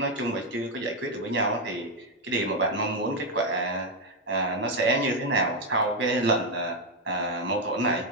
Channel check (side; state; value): both; normal; correlation 0.04